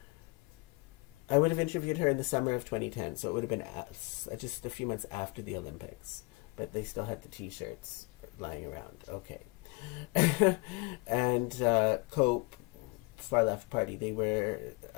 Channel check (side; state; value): right; quieter; 26.3 dB